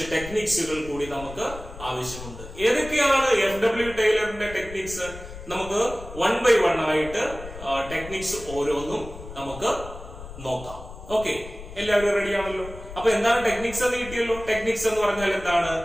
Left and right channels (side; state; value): left; noise; rumble, 13 dB below the sound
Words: ടെക്നിക്സുകൾ കൂടി നമുക്ക് ആവശ്യമുണ്ട്. ഏതൊക്കെയാണ് FW ടൈലറിന്റെ ടെക്നിക്സ്? നമുക്ക് 1 by 1 ആയിട്ട് ടെക്നിക്സ് ഓരോന്നും നമുക്ക് നോക്കാം. ഓക്കെ, എല്ലാവരും റെഡി ആണല്ലോ? അപ്പൊ എന്താണ് ടെക്നിക്സ് എന്ന് കിട്ടിയല്ലോ? ടെക്നിക്സ് എന്ന് പറഞ്ഞാൽ എന്താണ്?